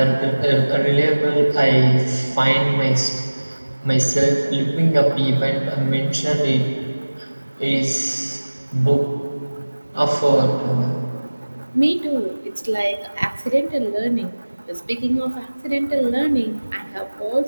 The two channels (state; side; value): inverted; both; correlation -1.00